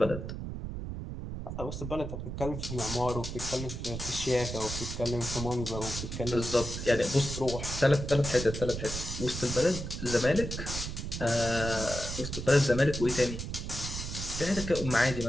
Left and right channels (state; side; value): noise; right; rumble, 6 dB below the sound